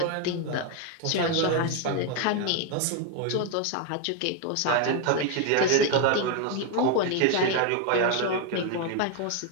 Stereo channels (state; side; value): different; both; correlation 0.01